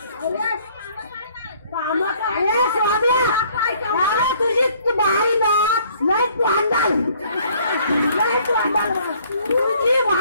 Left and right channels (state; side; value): inverted; both; correlation -0.60